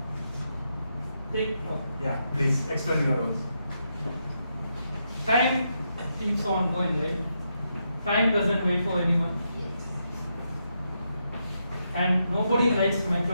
Take clock. Yeah, please explain your role. Time keeps on going, right? Time doesn't wait for anyone. And nobody likes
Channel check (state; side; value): inverted; both; correlation -0.82